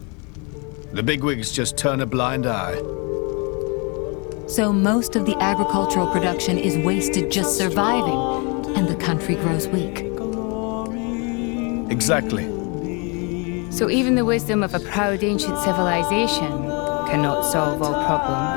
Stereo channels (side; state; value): right; quieter; 32.5 dB